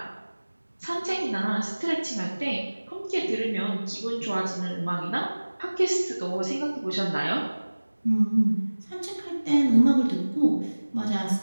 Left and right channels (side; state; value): both; inverted; correlation -1.00